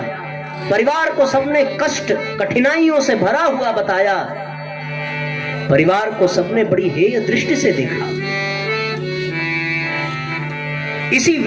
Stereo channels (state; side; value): identical; both; correlation 1.00